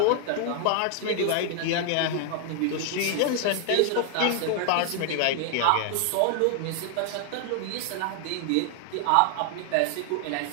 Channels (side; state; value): both; different; correlation 0.00